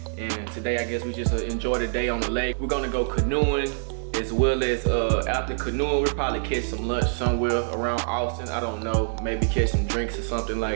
And today I guess we just enjoy the day on the lake. We're gonna go canoeing, as well as after canoeing we'll probably catch some lunch somewhere around Austin. I don't know, maybe catch some drinks or something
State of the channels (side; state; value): left; silent; 61 dB below the other